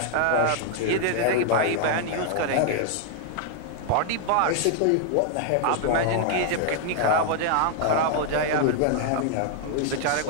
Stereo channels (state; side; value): different; both; correlation 0.00